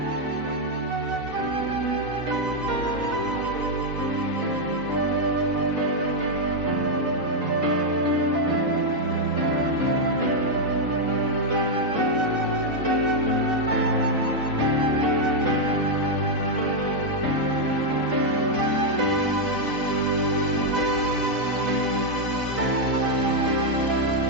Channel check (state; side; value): late; left; 4.0 ms